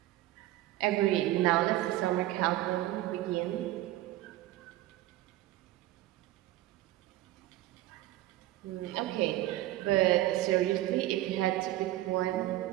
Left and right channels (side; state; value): left; quieter; 15.7 dB